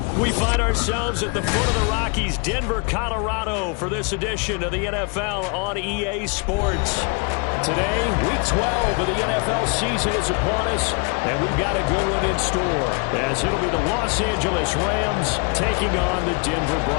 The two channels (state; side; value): quieter; right; 34.2 dB